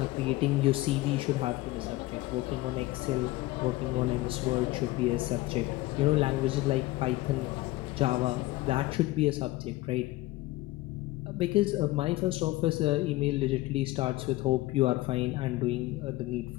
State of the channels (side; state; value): right; quieter; 18.4 dB